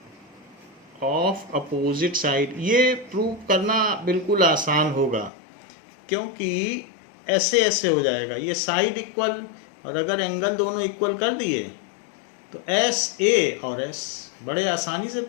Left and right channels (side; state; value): right; drops out; at 5.3 s